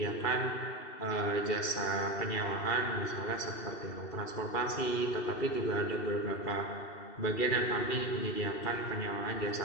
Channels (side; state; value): right; late; 2.7 ms